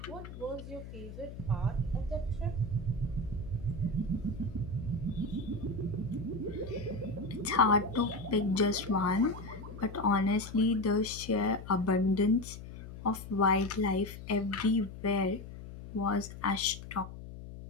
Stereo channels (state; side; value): noise; left; hum, 12 dB below the sound